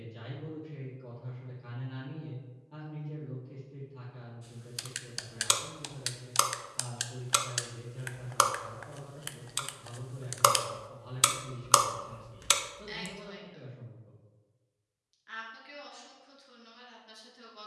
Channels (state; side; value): identical; both; correlation 1.00